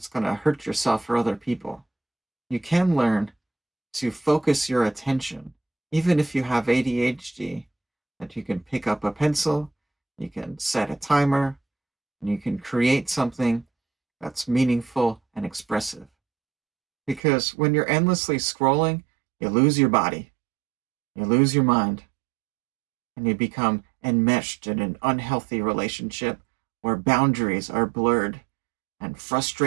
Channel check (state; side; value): drops out; left; at 17.2 s